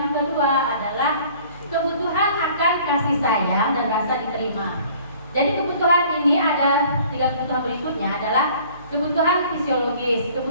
kedua adalah kebutuhan akan kasih sayang dan rasa diterima. Jadi kebutuhan ini ada 3 kebutuhan berikutnya adalah kebutuhan fisiologis,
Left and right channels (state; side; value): inverted; both; correlation -0.52